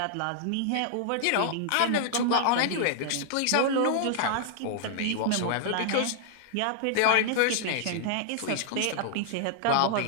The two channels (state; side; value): different; both; correlation -0.01